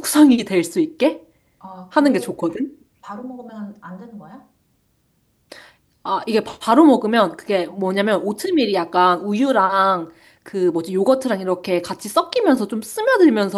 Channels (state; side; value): identical; both; correlation 1.00